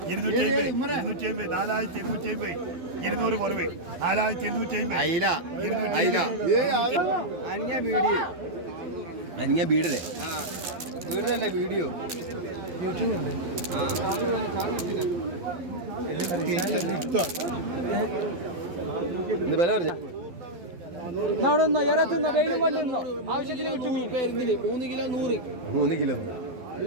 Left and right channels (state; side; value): late; left; 12 ms